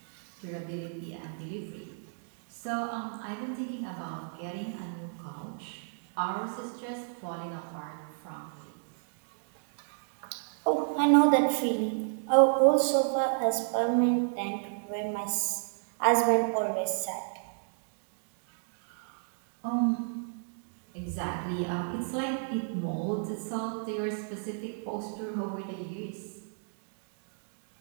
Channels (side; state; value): left; silent; digital silence